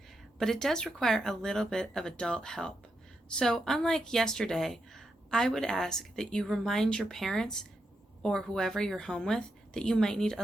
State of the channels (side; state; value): both; normal; correlation 0.84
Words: but it does require a little bit of adult help. So, unlike yesterday, I would ask that you remind your parents or whoever you're home with that you might need